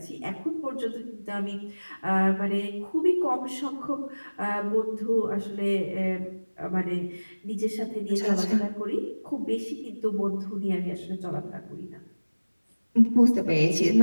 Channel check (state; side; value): inverted; both; correlation -1.00